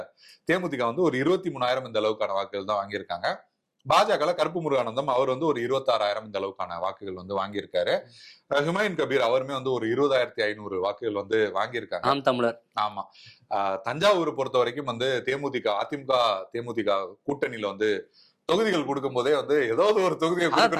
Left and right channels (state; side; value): identical; both; correlation 1.00